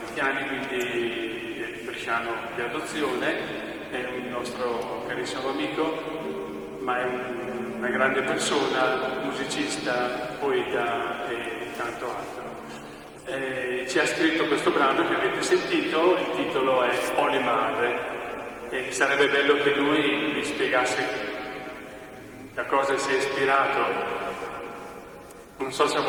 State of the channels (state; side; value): identical; both; correlation 1.00